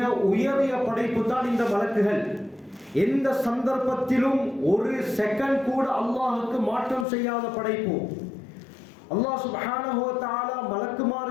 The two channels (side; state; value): right; drops out; at 7.1 s